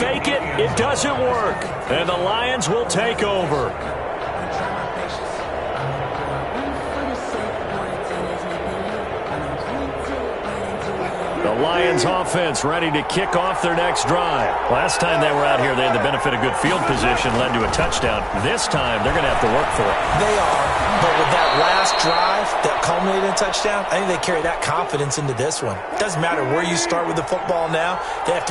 it. It doesn't work. And the Lions will take over. The Lions offense ready to kick off their next drive. Last time they were out here, they had the benefit of good field position, led to a touchdown. This time, they're going to have to work for it. They are, but with that last drive that culminated in a touchdown, I think they carry that confidence into this one. It doesn't matter where you start with the football now. They have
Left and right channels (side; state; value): both; identical; correlation 1.00